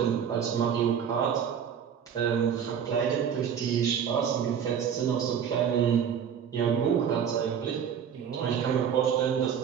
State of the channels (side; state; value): left; quieter; 8.0 dB